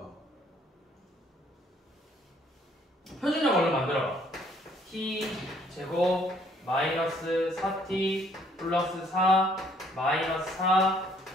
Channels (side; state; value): both; normal; correlation 0.63